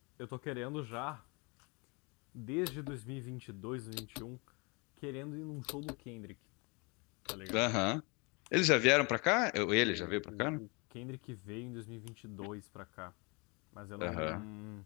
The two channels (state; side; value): quieter; right; 30.1 dB